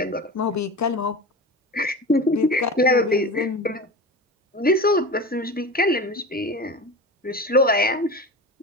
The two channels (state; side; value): normal; both; correlation 0.29